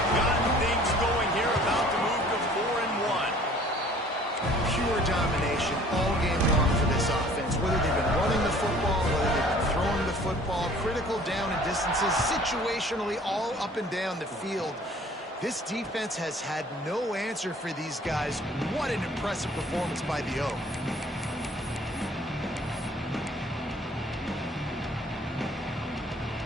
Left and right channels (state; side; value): normal; both; correlation 0.53